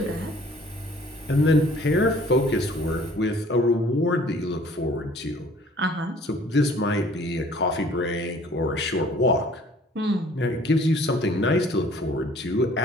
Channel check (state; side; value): normal; both; correlation 0.54